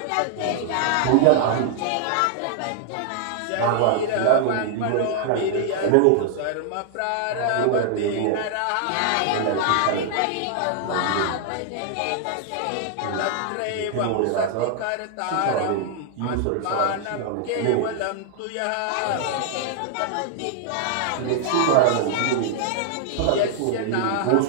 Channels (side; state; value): both; different; correlation 0.00